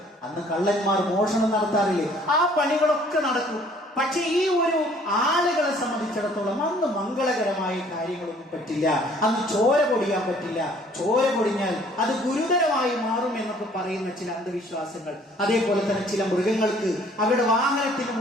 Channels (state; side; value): normal; both; correlation 0.57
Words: അന്ന് കള്ളന്മാർ മോഷണം നടത്താറില്ലേ? ആ പണികളൊക്കെ നടക്കും. പക്ഷെ ഈ ഒരു ആളുകളെ സംബന്ധിച്ചിടത്തോളം അന്ന് മംഗളകരമായ കാര്യങ്ങളൊന്നും പറ്റില്ല. അന്ന് ചോര പൊടിയാൻ പറ്റില്ല. ചോര പൊടിഞ്ഞാൽ അത് ഗുരുതരമായി മാറും എന്നൊക്കെ പറയുന്ന ചില അന്ധവിശ്വാസങ്ങൾ. അതേപോലെ തന്നെ ചില മൃഗങ്ങൾക്ക് അവരുടെ വാഹനത്തിന്